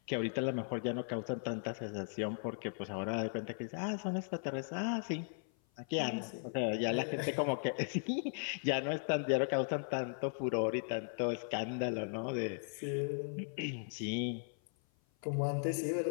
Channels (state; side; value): silent; right; 53 dB below the other